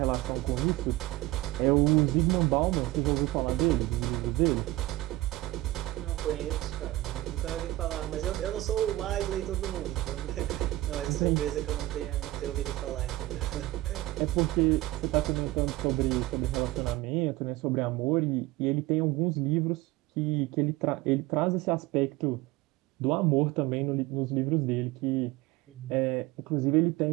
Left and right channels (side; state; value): left; quieter; 18.0 dB